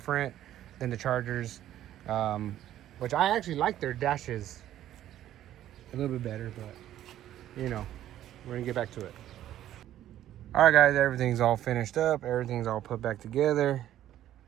than the Chargers. Which I actually like their dashes a little bit better, but you know, we're gonna get back to it. All right, guys, everything's all finished up. Everything's all put back together.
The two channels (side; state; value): left; quieter; 12.3 dB